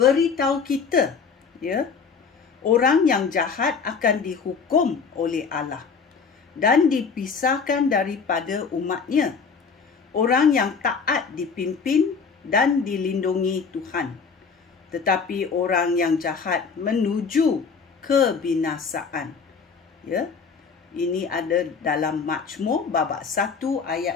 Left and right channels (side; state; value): right; quieter; 5.5 dB